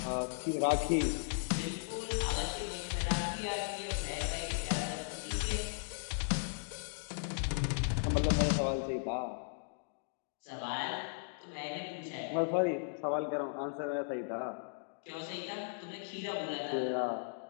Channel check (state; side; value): silent; right; digital silence